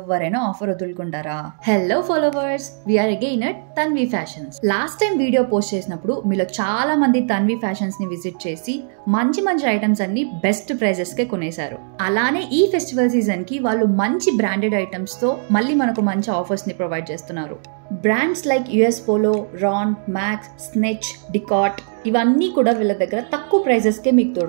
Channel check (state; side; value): silent; left; digital silence